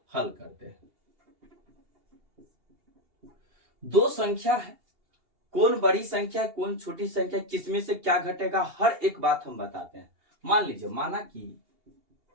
हल करते हैं। दो संख्या है, कौन बड़ी संख्या है कौन छोटी संख्या, किसमें से क्या घटेगा, हर एक बात हम बताते हैं। मान लीजिए,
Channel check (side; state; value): left; late; 2.8 ms